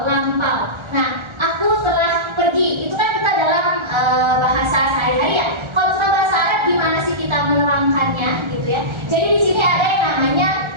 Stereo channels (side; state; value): left; late; 1.3 ms